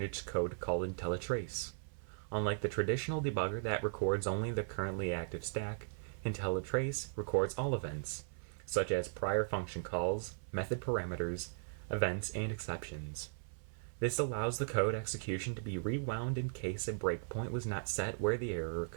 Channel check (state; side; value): silent; left; 53 dB below the other